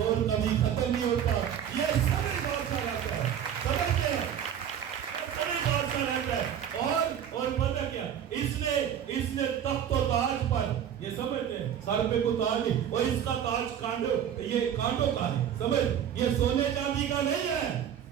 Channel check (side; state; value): left; quieter; 9.3 dB